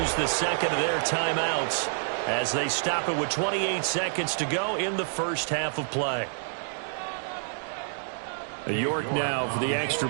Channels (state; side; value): silent; left; digital silence